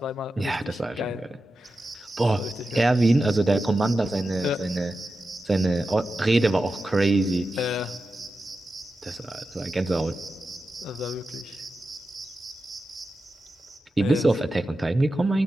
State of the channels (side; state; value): both; normal; correlation 0.91